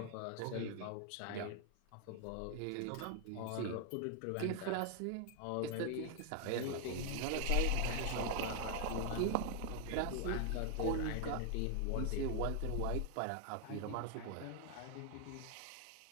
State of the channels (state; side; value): different; both; correlation 0.00